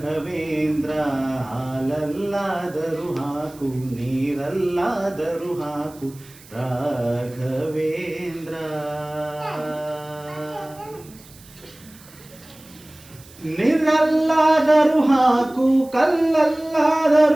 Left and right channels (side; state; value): right; noise; hiss, 23 dB below the sound